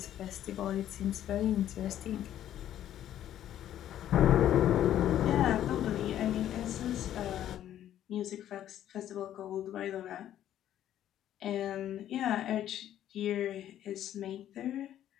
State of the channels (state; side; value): quieter; right; 11.6 dB